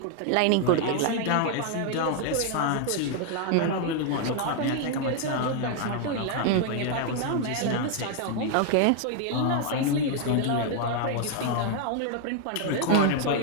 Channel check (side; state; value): both; different; correlation 0.00